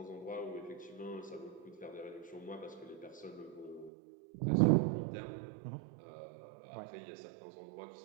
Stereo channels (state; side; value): drops out; left; at 3.9 s